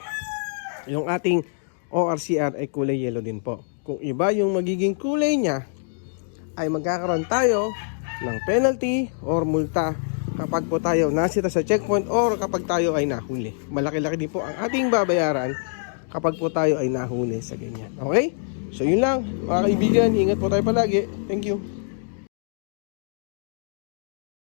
yung ating ORCR ay kulay yellow din po. Kung iba yung magiging kulay niya, ay magkakaroon tayo ng penalty or multa kapag po tayo nasita sa checkpoint or kapag tayo ay nahuli. Malaki-laki din po ang ating babayaran kapag po tayo ay nahuli sa ganyan. Okay? So yun lang mga kaibigan, ingat po tayo palagi. Thank you.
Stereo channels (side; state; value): right; silent; digital silence